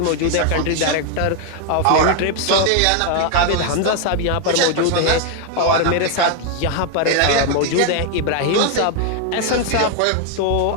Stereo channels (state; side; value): different; both; correlation 0.01